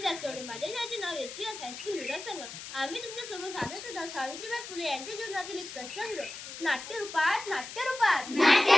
जास्तवडे. माझ्या शाळेचे नाव एचएस हायस्कूल क्रीडा संघ. आम्ही तुमच्या समोर सादर करत आहोत सावित्रीबाई फुले यांच्या जीवनातील एक प्रसंग. नाट्यरूपात नाट्यरूपात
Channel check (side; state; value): left; noise; hiss, 11 dB below the sound